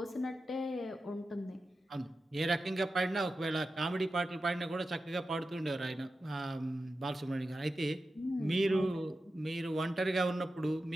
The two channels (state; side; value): normal; both; correlation 0.92